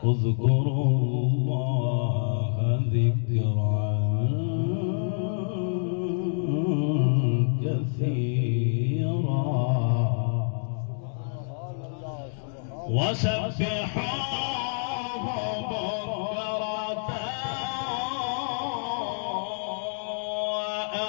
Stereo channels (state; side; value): silent; right; digital silence